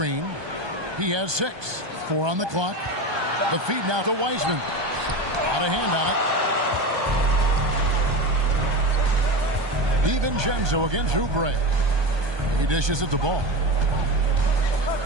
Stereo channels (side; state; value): left; late; 1.2 ms